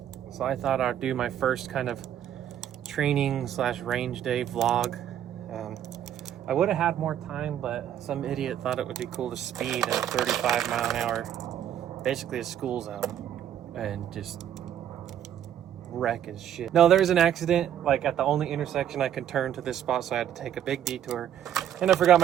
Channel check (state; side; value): quieter; left; 10.4 dB